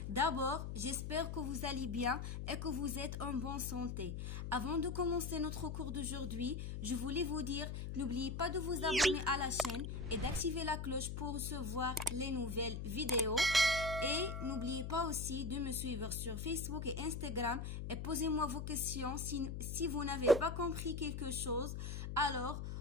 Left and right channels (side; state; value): left; noise; hum, 5 dB below the sound